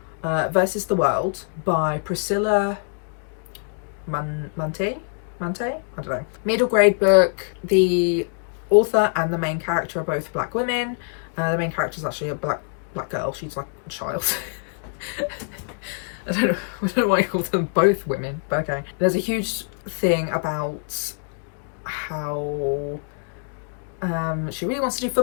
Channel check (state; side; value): silent; right; 60 dB below the other